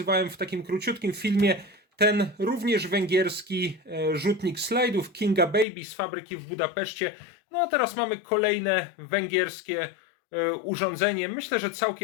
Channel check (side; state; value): right; drops out; at 5.7 s